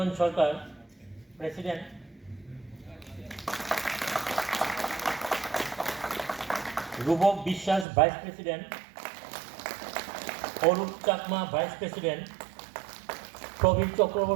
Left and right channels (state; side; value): drops out; left; at 7.9 s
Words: Sarkar president, Rupak Biswas vice president, Arup Chakma vice president, Prabir